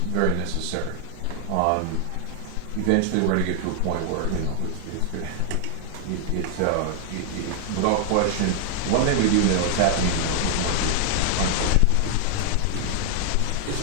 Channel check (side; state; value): both; different; correlation 0.00